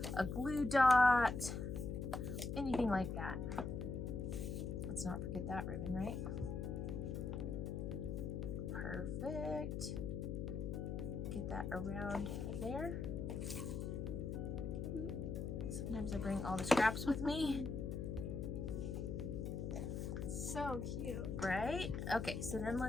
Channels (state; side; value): noise; left; hum, 3 dB below the sound